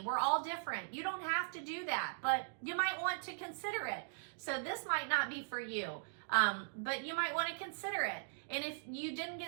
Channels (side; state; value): left; silent; digital silence